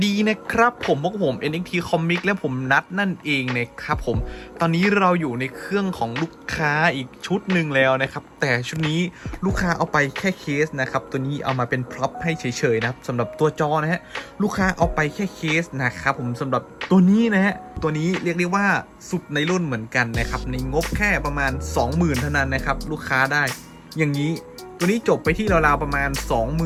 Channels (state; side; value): identical; both; correlation 1.00